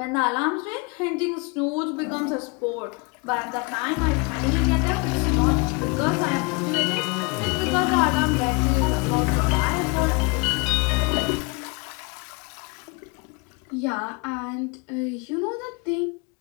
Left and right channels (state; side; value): quieter; right; 29.6 dB